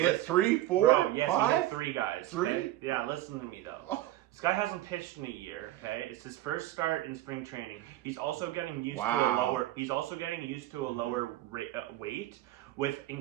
hit 3, 4, Bro, yes, 5? he hit 3 guys. 3? Okay? Yeah, listen to me though. This guy hasn't pitched in a year. Okay, it's his first start in spring training. He's also getting used to a lower. He's also getting used to a lower weight with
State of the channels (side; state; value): left; quieter; 15.1 dB